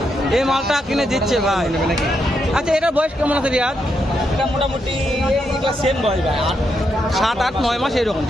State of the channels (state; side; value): normal; both; correlation 0.81